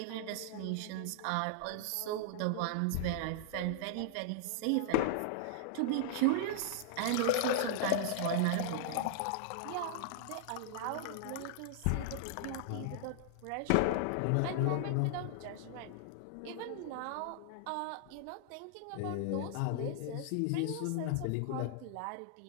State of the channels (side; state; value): both; different; correlation -0.01